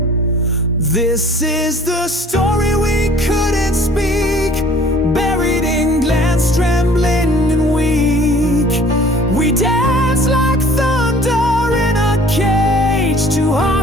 This is the story we couldn't speak, buried in glance, trembling and weak. We danced like thunder in a cage, two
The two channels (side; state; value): both; normal; correlation 0.51